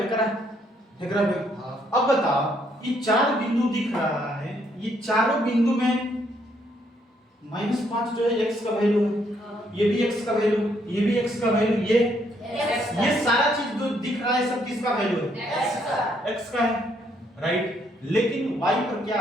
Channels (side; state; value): both; normal; correlation 0.71